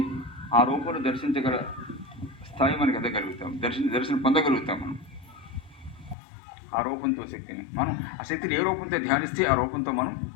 ఆ రూపంలో దర్శించగల స్థాయి మనకి ఎదగలుగుతాం, దర్శనం పొందగలుగుతాం. మనం ఆ రూపంతో శక్తిని మనం ఆ శక్తిని ఏ రూపంతో ధ్యానిస్తే ఆ రూపంతో మనం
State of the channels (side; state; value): right; drops out; at 6.2 s